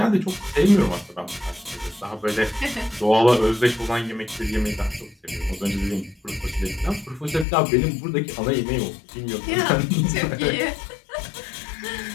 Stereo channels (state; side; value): drops out; right; at 7.5 s